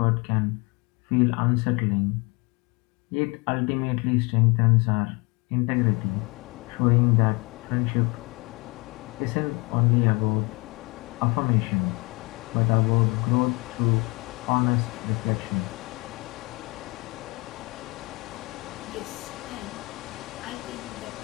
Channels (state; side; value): quieter; right; 27.1 dB